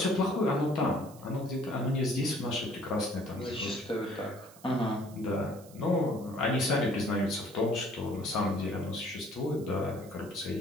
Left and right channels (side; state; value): right; noise; hiss, 22 dB below the sound